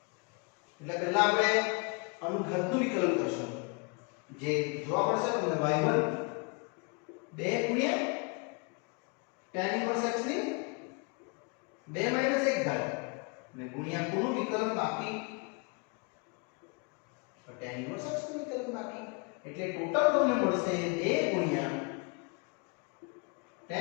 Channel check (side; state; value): right; quieter; 32.4 dB